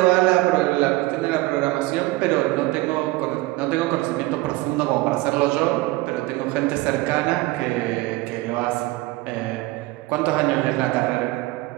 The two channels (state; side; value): quieter; left; 20.0 dB